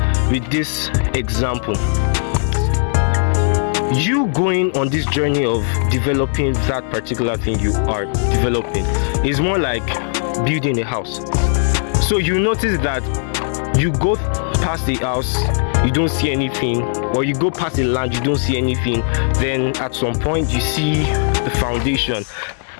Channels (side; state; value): right; silent; 60 dB below the other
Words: with this example. You going on this journey of developing that particular thing you are developing is more like building a house. So you notice that you go past the house, you don't see anything, or you go past the land, you don't see anything. Then at some point you see the foundation,